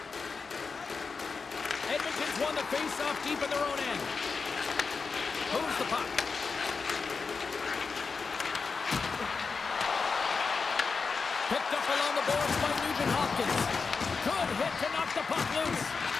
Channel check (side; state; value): right; quieter; 4.9 dB